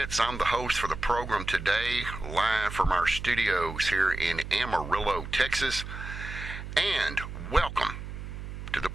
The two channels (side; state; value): right; noise; hum, 9 dB below the sound